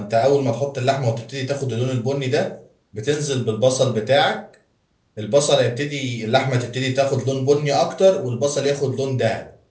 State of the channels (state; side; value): identical; both; correlation 1.00